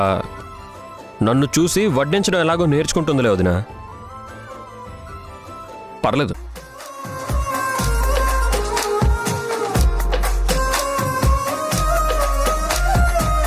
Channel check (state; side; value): identical; both; correlation 1.00